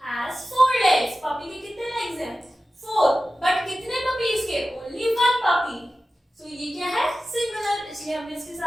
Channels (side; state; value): both; normal; correlation 0.94